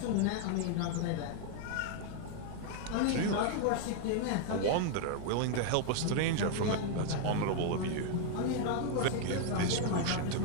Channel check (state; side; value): different; both; correlation 0.00